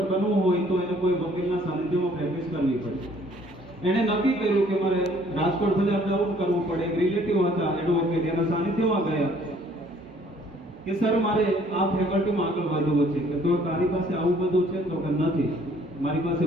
બનવું હોય તો એને કોઈ વકીલના સાનિધ્યમાં પ્રેક્ટિસ કરવી પડે. એને નક્કી કર્યું કે મારે રાજકોટ સુધી અપડાઉન કરવું પડે. રિલેટિવ હતા એડવોકેટ, એના સાનિધ્યમાં ગયા કે સર મારે આ ફેકલ્ટીમાં આગળ વધવું છે. કે તો તારી પાસે આવું બધું છે? તો કે નથી, મારી પાસે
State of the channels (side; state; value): both; normal; correlation 0.59